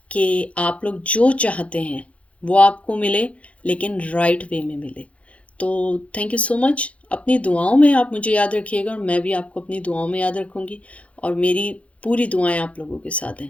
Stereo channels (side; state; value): right; late; 0.064 ms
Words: कि आप लोग जो चाहते हैं वो आपको मिले, लेकिन राइट वे में मिले। तो थैंक यू सो मच। अपनी दुआओं में आप मुझे याद रखिएगा और मैं भी आपको अपनी दुआओं में याद रखूँगी, और मेरी पूरी दुआएं आप लोगों के साथ